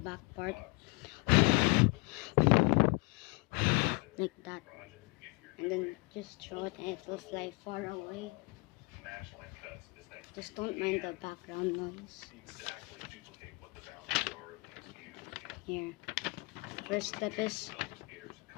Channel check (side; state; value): right; quieter; 29.2 dB